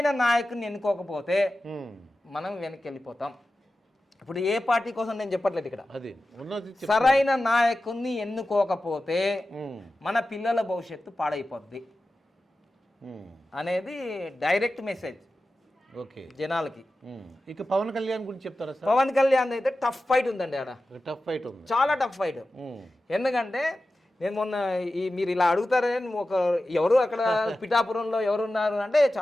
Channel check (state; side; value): normal; both; correlation 0.94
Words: నాయకుని ఎన్నుకోకపోతే మనం వెనక్కి వెళ్ళిపోతాం. ఇప్పుడు ఏ పార్టీ కోసం నేను చెప్పట్లేదు ఇక్కడ. సరైన నాయకుని ఎన్నుకోకపోతే మన పిల్లల భవిష్యత్తు పాడైపోద్ది అనేది డైరెక్ట్ మెసేజ్ జనాలకి. ఇక పవన్ కళ్యాణ్ గురించి చెప్తారా? పవన్ కళ్యాణ్ అయితే టఫ్ ఫైట్ ఉందండి. ఆడ టఫ్ ఫైట్ ఉంది, చాలా టఫ్ ఫైట్. ఎందుకంటే నేను మొన్న మీరు ఇలా అడుగుతారని ఎవరు అక్కడ పిఠాపురంలో ఎవరున్నారు అంటే